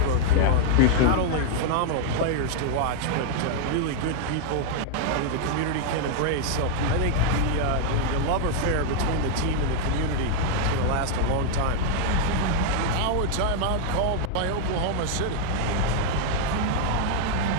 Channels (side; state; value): both; different; correlation 0.00